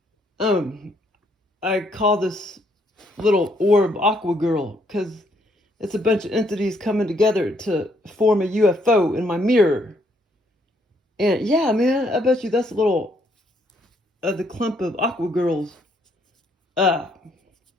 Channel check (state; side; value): normal; both; correlation 0.70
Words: I call this little orb Aqua Girl because it's a bunch of entities coming together to form a UFO in my mirror. And yeah, man, I bet you that's a little the clump of Aqua Girls.